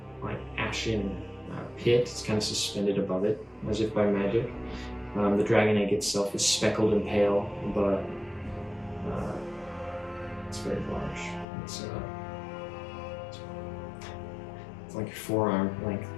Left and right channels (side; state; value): right; drops out; at 11.5 s